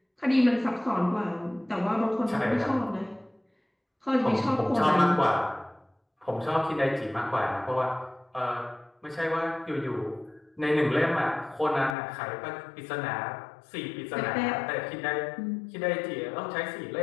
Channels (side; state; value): right; drops out; at 12.0 s